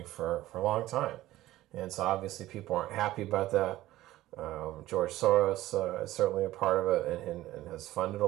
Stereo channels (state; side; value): quieter; left; 15.7 dB